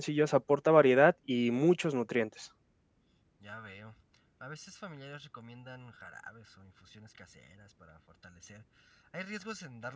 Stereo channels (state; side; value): identical; both; correlation 1.00